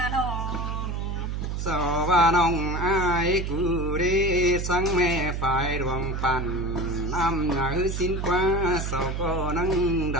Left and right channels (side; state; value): right; noise; hum, 3 dB below the sound